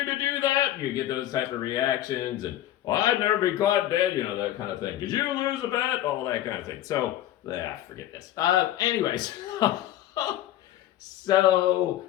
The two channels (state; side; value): quieter; right; 13.1 dB